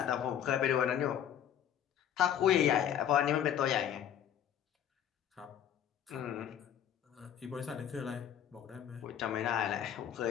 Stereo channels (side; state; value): right; quieter; 9.9 dB